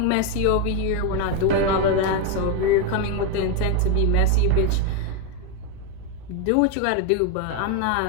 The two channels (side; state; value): both; different; correlation 0.02